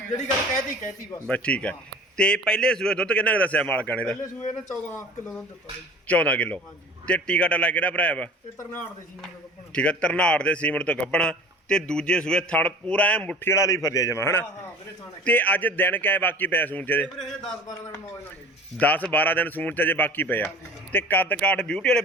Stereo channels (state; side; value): normal; both; correlation 0.43